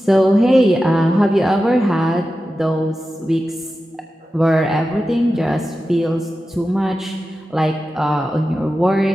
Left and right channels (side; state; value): both; normal; correlation 0.92